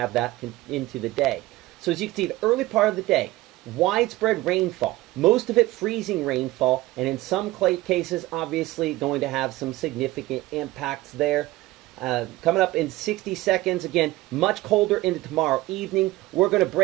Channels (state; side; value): quieter; left; 18.3 dB